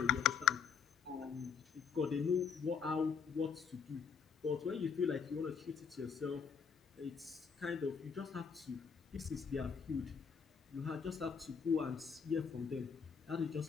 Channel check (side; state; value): right; quieter; 6.4 dB